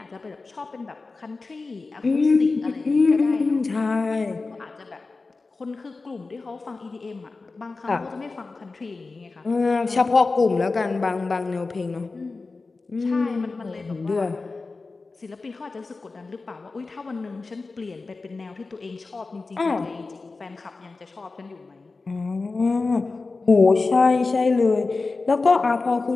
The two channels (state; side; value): quieter; right; 3.8 dB